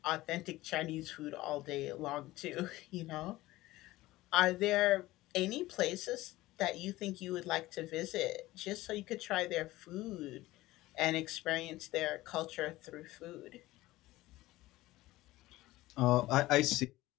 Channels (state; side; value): quieter; right; 17.7 dB